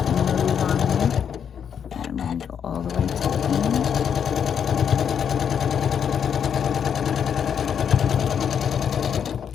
on me. And I'm going to go all the way to the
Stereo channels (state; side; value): quieter; right; 7.9 dB